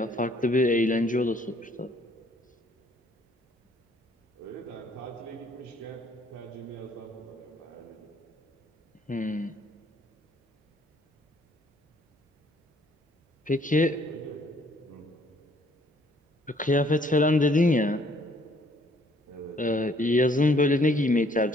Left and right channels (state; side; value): normal; both; correlation 0.62